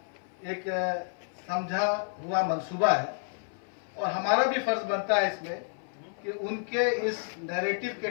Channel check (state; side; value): silent; right; 58 dB below the other